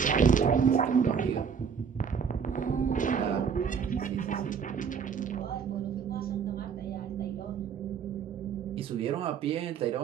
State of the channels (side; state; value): left; quieter; 6.8 dB